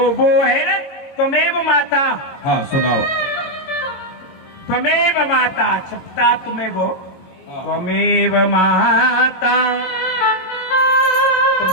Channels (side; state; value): right; late; 22 ms